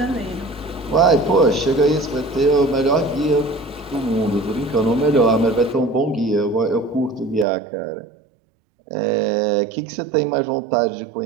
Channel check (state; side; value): drops out; left; at 7.5 s